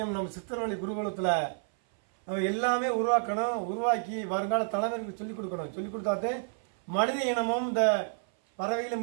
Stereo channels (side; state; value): left; silent; 56 dB below the other